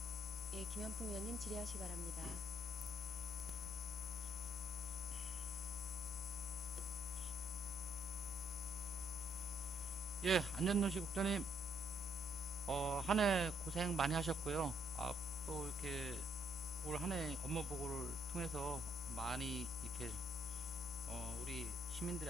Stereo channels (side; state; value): both; normal; correlation 0.70